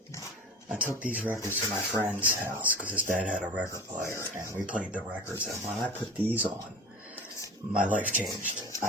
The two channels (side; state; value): both; normal; correlation 0.34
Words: I took these records to my friend's house because his dad had a record player, and we played the records. And when I put these on, my life changed.